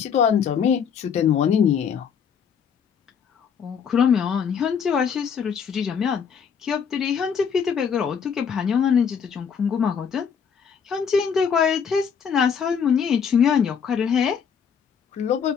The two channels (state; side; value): quieter; right; 7.0 dB